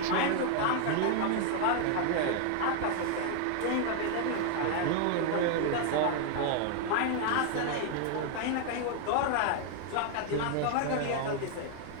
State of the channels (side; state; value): both; different; correlation 0.00